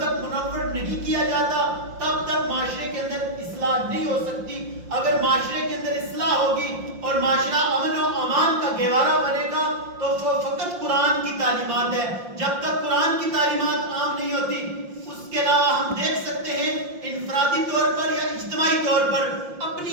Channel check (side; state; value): left; late; 5.7 ms